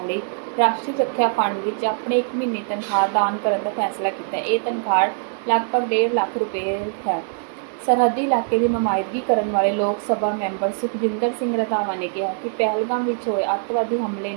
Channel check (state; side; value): silent; left; digital silence